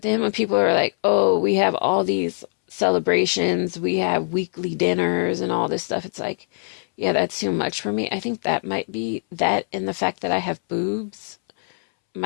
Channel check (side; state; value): right; silent; 64 dB below the other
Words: then when people are like, oh, we have all these celebrations, we have weekly dinners and all this stuff, it's like, yeah, that's too much for me. I think that might be that and the fact that I have boobs